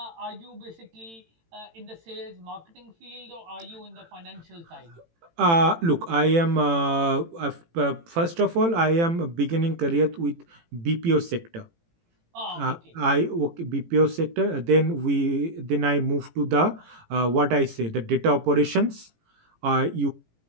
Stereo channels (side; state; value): left; late; 18 ms